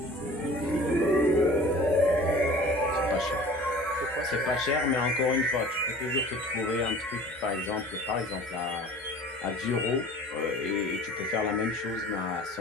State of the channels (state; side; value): normal; both; correlation 0.45